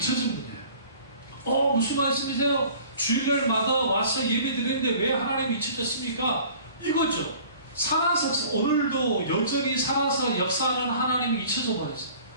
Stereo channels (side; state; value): both; inverted; correlation -0.49